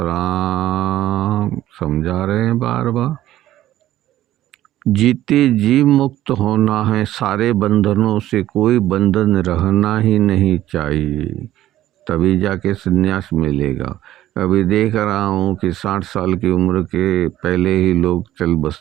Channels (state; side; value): quieter; left; 13.8 dB